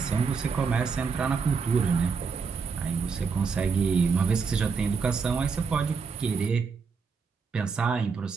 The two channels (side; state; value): left; quieter; 5.3 dB